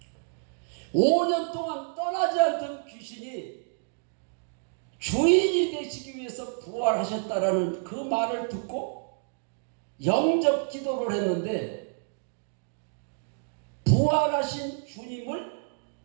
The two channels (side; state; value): left; silent; digital silence